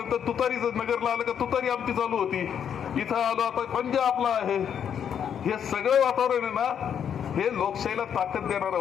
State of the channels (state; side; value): quieter; right; 8.4 dB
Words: तुतारीच नगरला आलं का तुतारी आमची चालू होती. इथं आलो आता पंजा आपला आहे. हे सगळं वातावरण आहे ना, हे लोकशाहीला ताकद देणारं